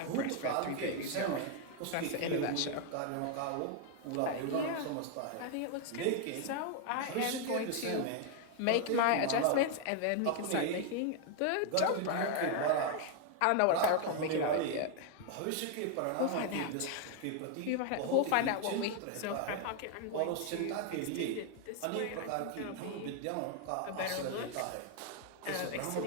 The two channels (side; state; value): both; different; correlation 0.00